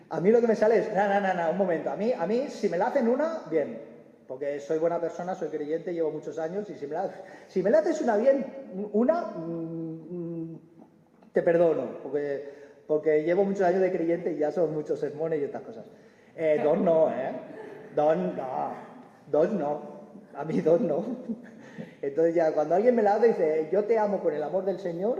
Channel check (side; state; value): both; identical; correlation 1.00